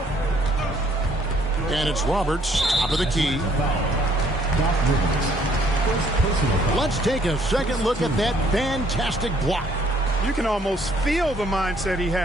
And it's Roberts, top of the key. Let's take a second look at that fantastic block. You can almost feel the mindset he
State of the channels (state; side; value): normal; both; correlation 0.63